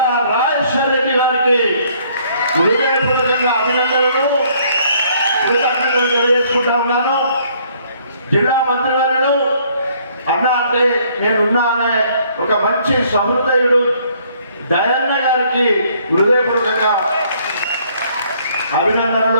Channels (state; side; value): inverted; both; correlation -0.63